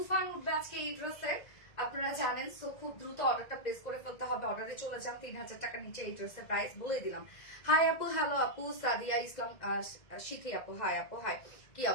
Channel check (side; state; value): right; late; 2.0 ms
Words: উঠবে আজকে এই ড্রেসের, আপনারা জানেন। সো খুব দ্রুত অর্ডারটা প্লেস করে ফেলতে হবে, অর্ডারে চলে যান। 3000 টাকার নিচে এই ড্রেসের প্রাইস বলে দিলাম। হাই আপু, হ্যালো আপু। সাদিয়া ইসলাম শিখি আপু, হাই আপু, হাই, কি